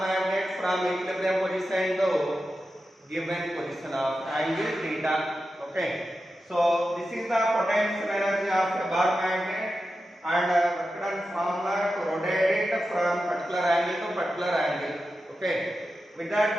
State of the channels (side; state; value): both; normal; correlation 0.91